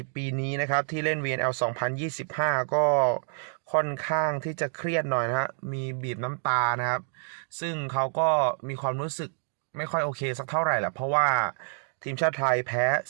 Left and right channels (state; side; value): silent; left; 59 dB below the other